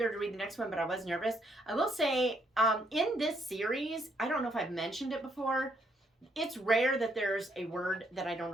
to read the next one, but I was nervous. I will say, in this series, I don't know if I've mentioned it before, it's rare that there's a word that I don't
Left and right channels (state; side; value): normal; both; correlation 0.72